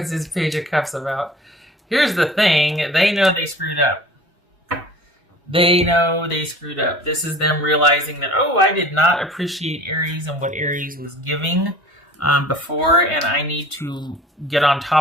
this Page of Cups about? Here's the thing. They know they screwed up. This is them realizing that, I did not appreciate Aries and what Aries was giving before, and I need to get on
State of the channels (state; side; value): normal; both; correlation 0.44